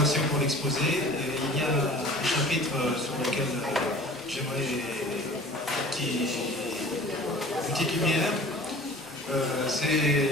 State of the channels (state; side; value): normal; both; correlation 0.44